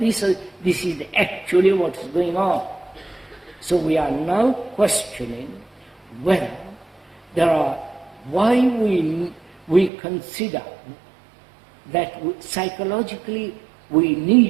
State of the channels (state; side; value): drops out; left; at 9.9 s